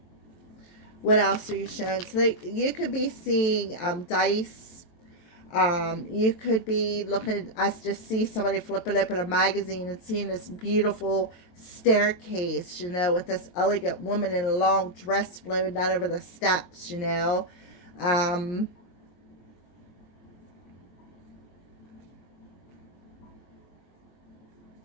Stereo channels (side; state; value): right; late; 23 ms